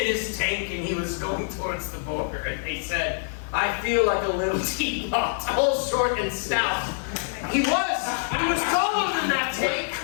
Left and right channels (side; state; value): right; silent; digital silence